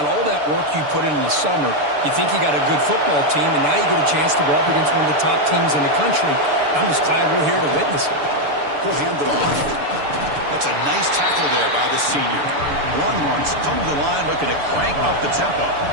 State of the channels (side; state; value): left; late; 6.9 ms